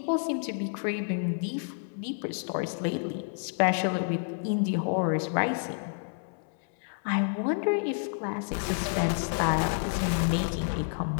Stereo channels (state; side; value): silent; right; 58 dB below the other